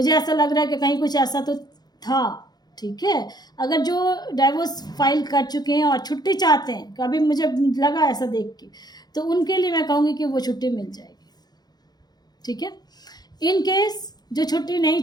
ऐसा लग रहा है कि कहीं कुछ ऐसा तो था। ठीक है, अगर जो डाइवोर्स फाइल कर चुके हैं और छुट्टी चाहते हैं, कभी मुझे लगा ऐसा देख के, तो उनके लिए मैं कहूँगी कि वो छुट्टी मिल जाएगी। ठीक है, इन केस जो छुट्टी नहीं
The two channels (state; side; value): late; right; 0.19 ms